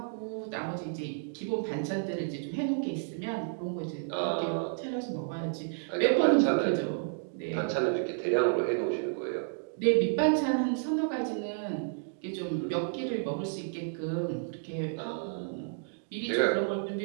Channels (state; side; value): silent; left; digital silence